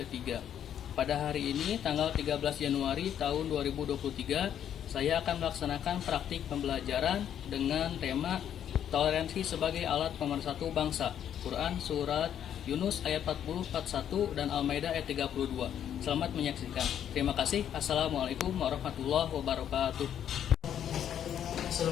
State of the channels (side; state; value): right; quieter; 9.7 dB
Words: Pada hari ini, tanggal 13 Januari tahun 2023, saya akan melaksanakan praktik pembelajaran dengan tema toleransi sebagai alat pemersatu bangsa. Quran Surat Yunus ayat 40-41 dan Al-Maidah ayat 32. Selamat menyaksikan. Terima kasih. Assalamualaikum warahmatullahi wabarakatuh.